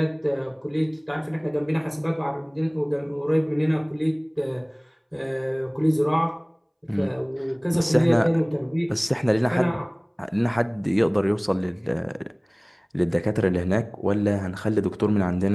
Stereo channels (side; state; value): both; identical; correlation 1.00